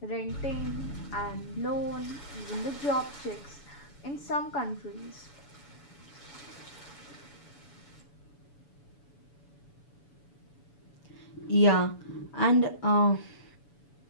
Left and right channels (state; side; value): late; right; 7.0 ms